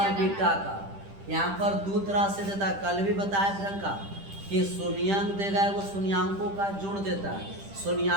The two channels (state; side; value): late; left; 10 ms